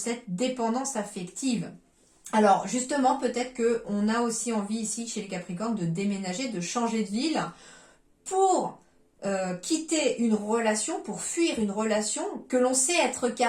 dépendance affective. Alors justement, peut-être qu'on a aussi envie ici chez les Capricornes de déménager, de changer de ville pour quitter une relation, pour fuir une relation que l'on sait être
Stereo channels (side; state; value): both; identical; correlation 1.00